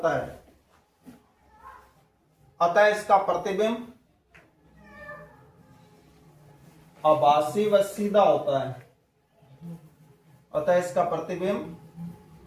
है, अतः इसका प्रतिबिंब आभासी व सीधा होता है। अतः इसका प्रतिबिंब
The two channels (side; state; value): both; identical; correlation 1.00